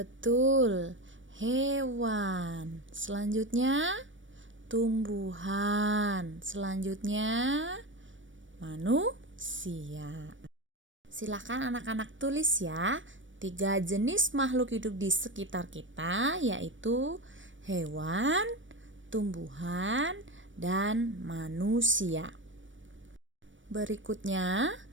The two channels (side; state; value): left; late; 0.56 ms